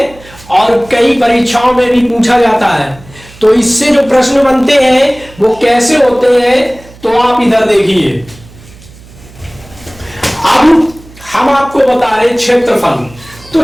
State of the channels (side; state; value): right; noise; hum, 22 dB below the sound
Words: और कई परीक्षाओं में भी पूछा जाता है। तो इससे जो प्रश्न बनते हैं वो कैसे होते हैं, तो आप इधर देखिए। अब हम आपको बता रहे हैं क्षेत्रफल।